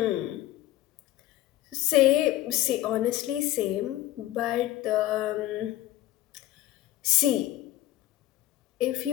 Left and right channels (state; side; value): quieter; right; 14.8 dB